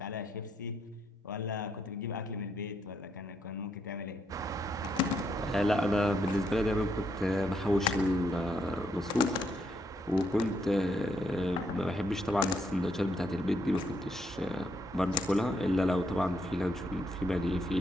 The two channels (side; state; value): both; normal; correlation 0.76